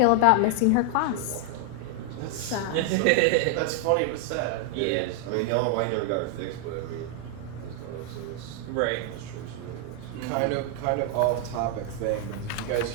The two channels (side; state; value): both; different; correlation 0.00